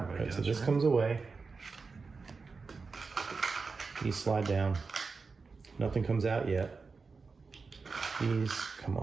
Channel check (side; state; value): left; quieter; 4.5 dB